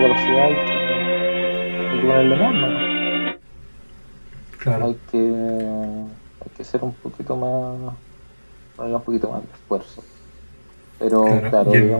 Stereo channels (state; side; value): inverted; both; correlation -1.00